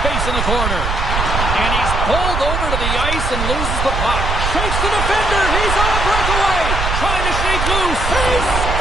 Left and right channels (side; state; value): right; noise; rumble, 2 dB below the sound